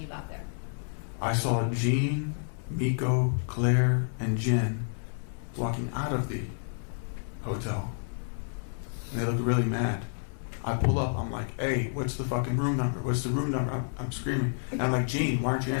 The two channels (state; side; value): silent; right; 58 dB below the other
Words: you got there? I saw Jean, Miko, Claire, and Jen walking out of the hotel. And they looked really mad. I pull up, I'm like, "Hey, what's the fucking room number? What's the room number?" I'm screaming. And I'm like, "Gene, why aren't you